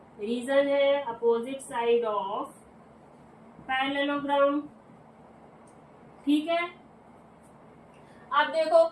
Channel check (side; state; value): both; identical; correlation 1.00